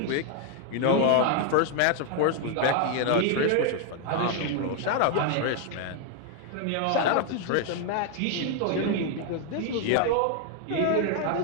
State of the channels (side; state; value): both; different; correlation 0.01